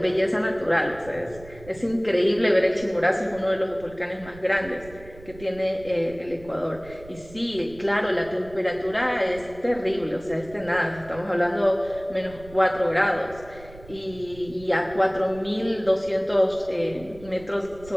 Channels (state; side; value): noise; right; rumble, 19 dB below the sound